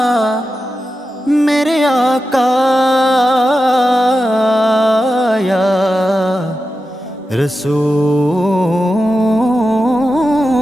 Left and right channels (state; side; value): normal; both; correlation 0.91